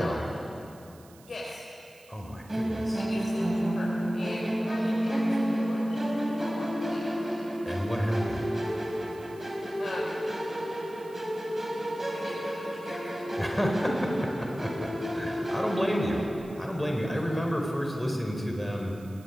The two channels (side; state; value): right; noise; hiss, 25 dB below the sound